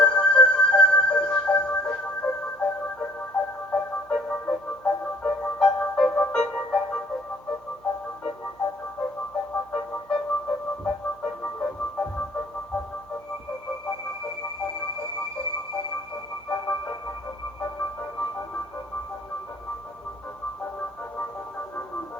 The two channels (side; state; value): right; noise; hum, 26 dB below the sound